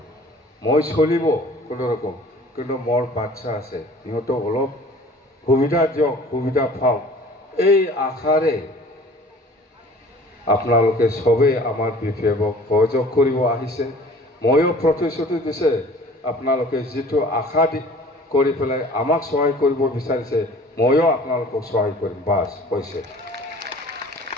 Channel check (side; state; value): both; normal; correlation 0.48